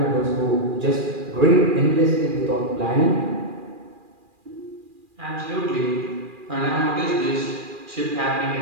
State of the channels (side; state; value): left; late; 2.4 ms